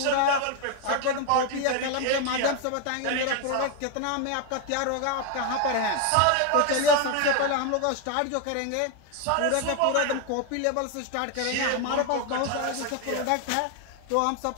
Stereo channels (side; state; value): both; different; correlation 0.01